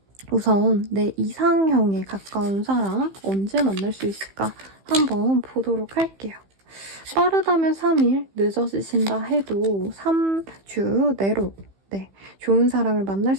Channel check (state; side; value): late; left; 15 ms